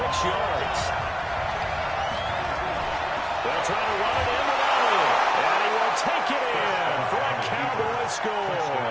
yards. They'll try to run it in with Elliott. And he will take it in for a Cowboy score.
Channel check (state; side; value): identical; both; correlation 1.00